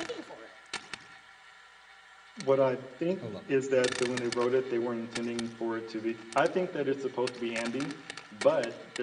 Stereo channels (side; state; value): both; identical; correlation 1.00